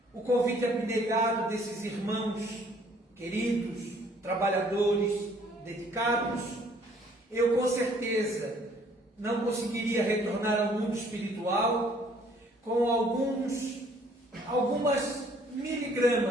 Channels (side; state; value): both; normal; correlation 0.60